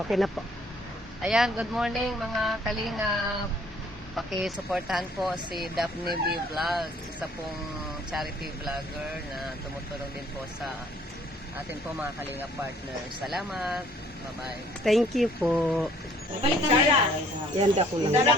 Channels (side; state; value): both; normal; correlation 0.59